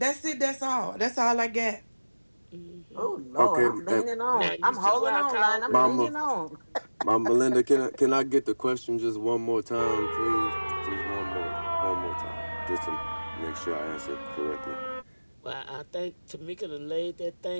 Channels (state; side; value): inverted; both; correlation -1.00